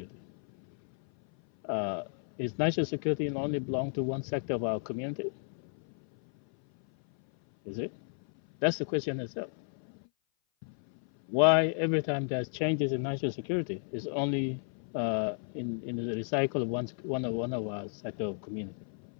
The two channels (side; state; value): right; silent; 56 dB below the other